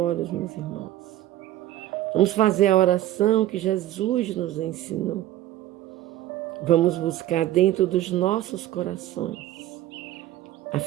meus irmãos. Vamos fazer a oração que Jesus nos ensinou. Vamos buscar dentro dos nossos corações a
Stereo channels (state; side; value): quieter; left; 13.9 dB